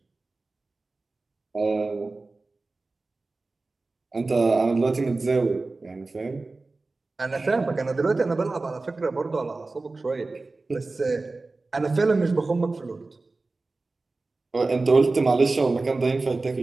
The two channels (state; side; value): quieter; left; 3.5 dB